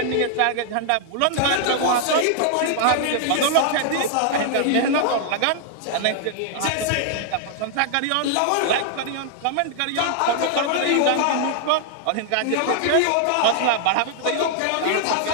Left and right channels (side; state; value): both; different; correlation 0.00